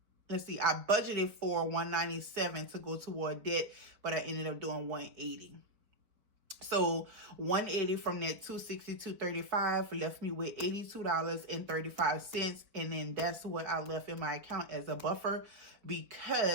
let's see, I budgeted for $197 to go toward debt, but I ended up doing $180. So $180 from that $262.35 left me with $82.35, and then that's what I left in my account as a buffer,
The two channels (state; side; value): late; left; 4.8 ms